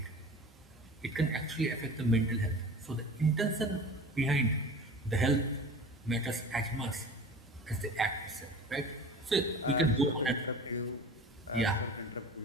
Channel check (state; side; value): normal; both; correlation 0.38